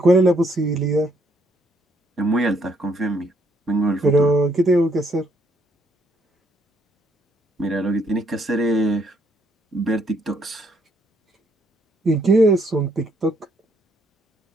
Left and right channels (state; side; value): normal; both; correlation 0.70